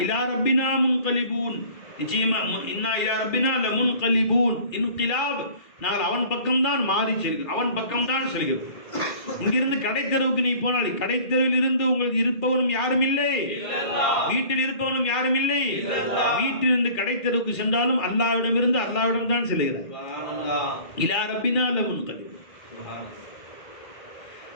இலா ரப்பினா முன்கலிபூன், நிச்சயமா இன்னா இலா ரப்பினா லமுன்கலிபூன், இன்கிலாப், நாங்கள் அவன் பக்கம்தான் மாறி செல்கிறோம், அவன் பக்கம்தான் செல்கிறோம். இங்கிருந்து கடைத்தெருவுக்கு நீ போனால் கடைத்தெருவில் இருந்து உங்களுக்கு இருப்பவனும் யாரும் இல்லை, வீட்டில் இருப்பவனும் யாரும் இல்லை. வீட்டிலிருந்து கடைத்தெருவுக்கு சென்றாலும் அல்லாஹ்விடமிருந்து அல்லாஹ்விடம் தான் செல்கிறார். இலா ரப்பினா லமுன்கலிபூன்,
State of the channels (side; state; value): right; late; 2.4 ms